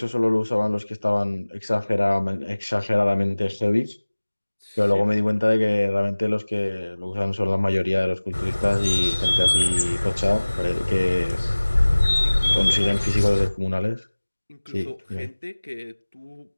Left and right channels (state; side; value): inverted; both; correlation -1.00